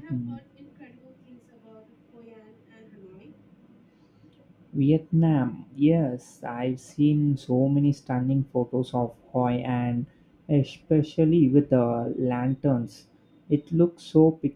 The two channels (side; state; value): both; identical; correlation 1.00